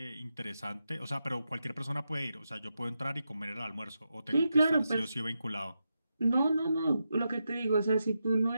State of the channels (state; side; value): inverted; both; correlation -0.87